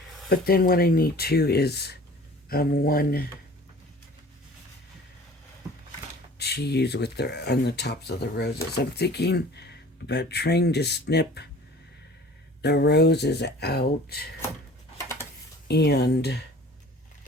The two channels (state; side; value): normal; both; correlation 0.46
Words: But then what I need too is one to use with on the tops of the roses. I'm thinking about trying to snip the roses out and